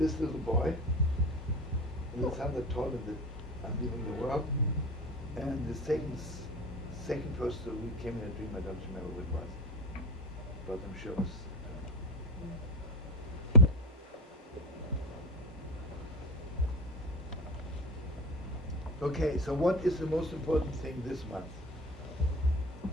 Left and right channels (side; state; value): both; normal; correlation 0.23